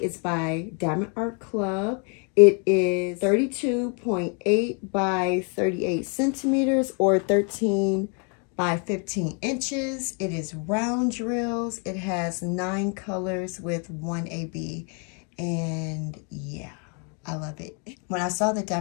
It's by Diamond Art Club. It is 32.8 by 38 centimeters or 13 by 15 inches. It is round drills. It has 9 colors with 1 AB. And yeah, I love it. When I saw that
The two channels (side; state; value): right; quieter; 37.7 dB